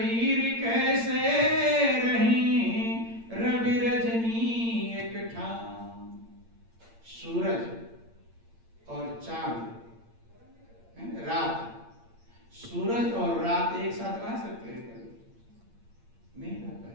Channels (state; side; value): late; left; 8.7 ms